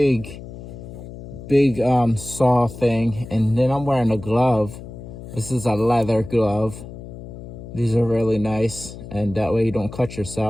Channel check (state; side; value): noise; left; hum, 13 dB below the sound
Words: saw thing, and then I'm wearing a glove. This is a leather glove. These are really nice, and that way you don't cut